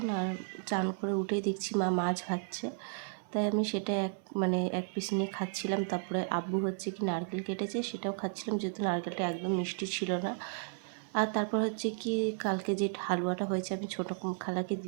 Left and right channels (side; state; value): left; silent; 55 dB below the other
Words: আর চান করে উঠেই দেখছি মা মাছ ভাজছে, তাই আমি সেটা এক পিস নিয়ে খাচ্ছিলাম। তারপরে আব্বু কি নারকেল কেটেছে, সেটাও খাচ্ছিলাম, যেহেতু নারকেলটা একদম মিষ্টি ছিল না। আর তারপর কি কালকে যে হালুয়াটা হয়েছে আমি ছোটো খালাকে